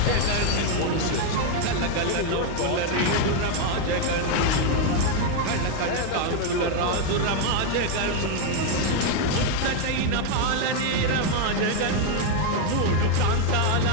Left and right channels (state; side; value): different; both; correlation 0.01